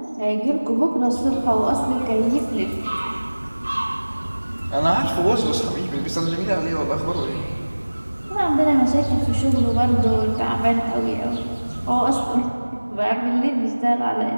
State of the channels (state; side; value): inverted; both; correlation -1.00